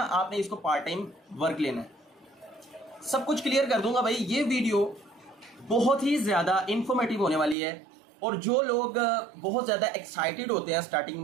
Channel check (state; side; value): drops out; left; at 7.6 s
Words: इसको पार्ट टाइम वर्क लेना है। सब कुछ क्लियर कर दूंगा भाई। ये वीडियो बहुत ही ज़्यादा इंफॉर्मेटिव होने वाली है और जो लोग बहुत ज़्यादा एक्साइटेड होते हैं स्टार्टिंग